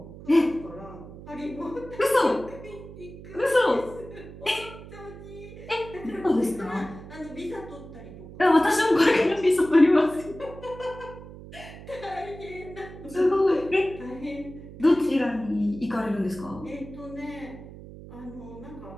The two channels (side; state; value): right; noise; hum, 15 dB below the sound